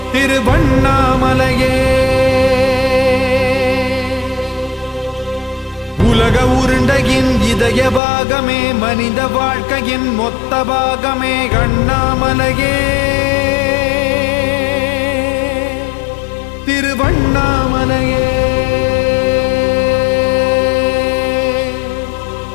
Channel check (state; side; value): drops out; right; at 8.0 s